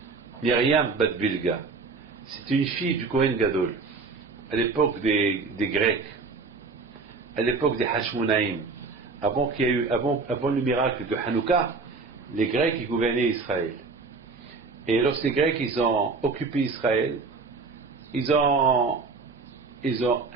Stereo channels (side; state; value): left; quieter; 4.3 dB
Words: Myriam Bat Bilga. C'était une fille du Kohen Gadol, à l'époque des Grecs, à l'époque des Hashmonaïm, avant le miracle de Hanouka, les Grecs ils gouvernaient Israël. Et lorsque les Grecs ils ont occupé Israël, ils ont